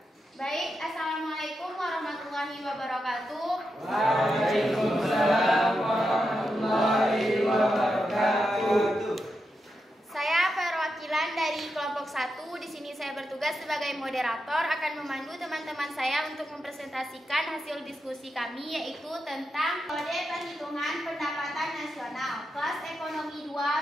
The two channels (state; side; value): normal; both; correlation 0.86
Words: Baik, Assalamualaikum warahmatullahi wabarakatuh. Waalaikumsalam warahmatullahi wabarakatuh. Saya perwakilan dari kelompok 1. Di sini saya bertugas sebagai moderator akan memandu teman-teman saya untuk mempresentasikan hasil diskusi kami yaitu tentang metode perhitungan pendapatan nasional kelas ekonomi 2